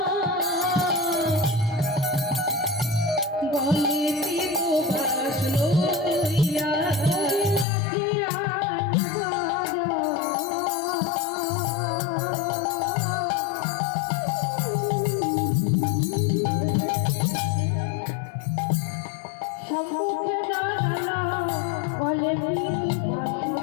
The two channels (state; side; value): drops out; right; at 7.7 s